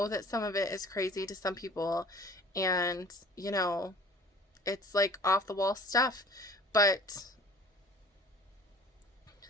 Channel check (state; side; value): normal; both; correlation 0.48